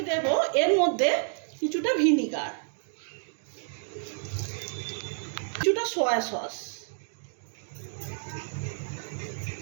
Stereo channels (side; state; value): left; silent; 58 dB below the other